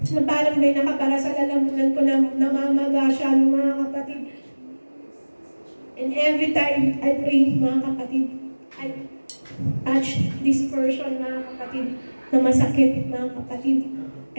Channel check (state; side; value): inverted; both; correlation -1.00